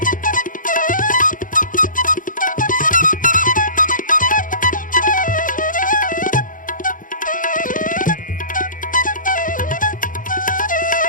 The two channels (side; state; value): right; late; 0.39 ms